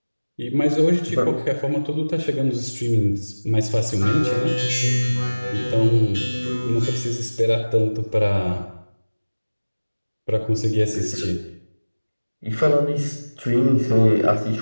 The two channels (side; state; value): both; inverted; correlation -1.00